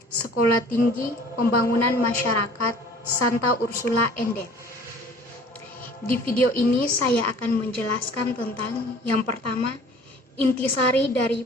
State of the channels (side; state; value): both; normal; correlation 0.49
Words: Sekolah Tinggi Pembangunan Masyarakat Santa Ursula Ende. Di video ini saya akan menjelaskan tentang yang pertama, intisari dari